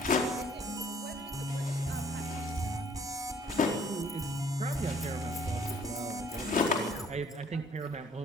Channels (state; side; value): normal; both; correlation 0.58